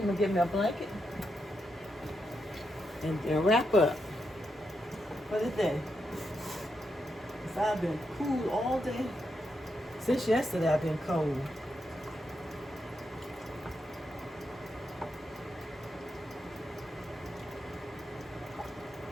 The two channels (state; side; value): normal; both; correlation 0.83